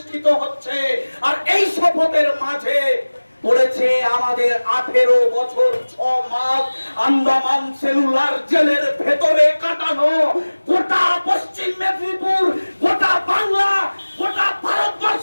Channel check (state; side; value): inverted; both; correlation -1.00